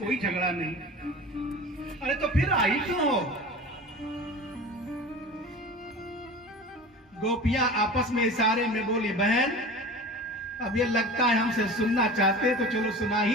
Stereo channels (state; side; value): normal; both; correlation 0.36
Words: झगड़ा नहीं। अरे तो फिर आई क्यों हो। गोपियां आपस में इशारे में बोली बहन अब ये लगता है हमसे सुनना चाहते तो चलो सुना